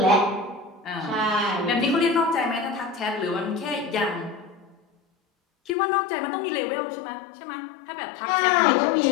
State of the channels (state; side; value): drops out; right; at 5.8 s